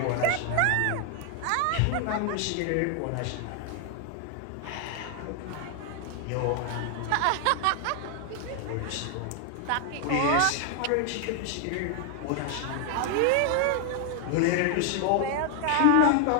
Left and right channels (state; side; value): different; both; correlation 0.00